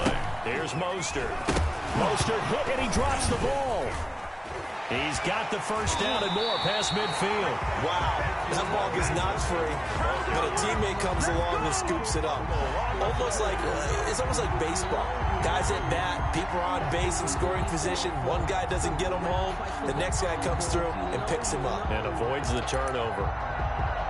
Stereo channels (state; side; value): identical; both; correlation 1.00